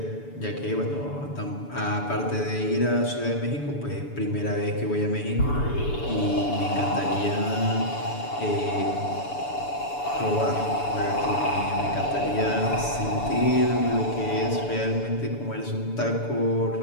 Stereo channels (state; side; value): late; right; 7.0 ms